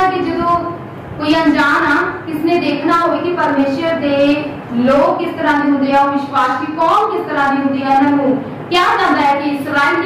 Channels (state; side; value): identical; both; correlation 1.00